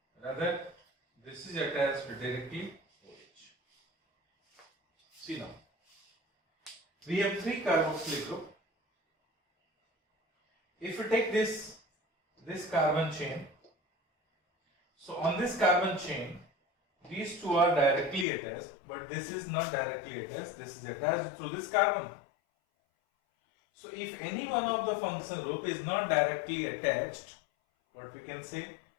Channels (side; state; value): right; drops out; at 18.2 s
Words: rather this is attached directly OH. See now, we have 3 carboxylic group. If you take this carbon chain, so on this carbon chain, these two are directly attached, but this is not directly attached, this is attached to this carbon. So if any one of the functional group is not directly attached, what we can say,